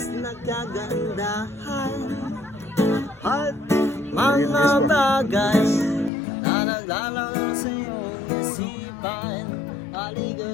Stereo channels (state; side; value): drops out; right; at 6.1 s